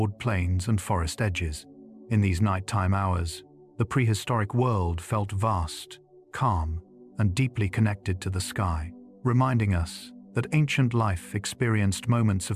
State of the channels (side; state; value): both; identical; correlation 1.00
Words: plains and forest edges. In these nighttime hours, the prehistoric world felt vast, calm, and deeply connected to the sky, reminding us that ancient life experienced moments